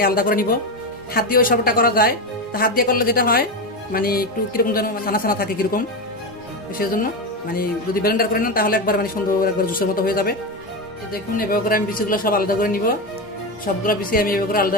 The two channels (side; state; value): both; normal; correlation 0.15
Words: আলাদা করে নিব। হাত দিয়ে ওই সবটা করা যায়, তো হাত দিয়ে করলে যেটা হয় মানে একটু কিরকম যেন ছানা ছানা থাকে কিরকম, সেই জন্য মানে যদি ব্লেন্ডার করে নেন তাহলে একবার মানে সুন্দর একবার জুসের মতো হয়ে যাবে। দেখুন এভাবে করে আমি বিচিগুলো সব আলাদা করে নিব। সবগুলো বিচি আমি এভাবে করে আলাদা